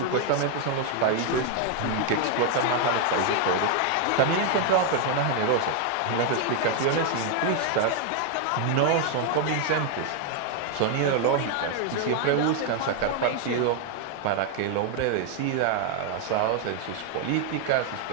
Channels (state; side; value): different; both; correlation 0.01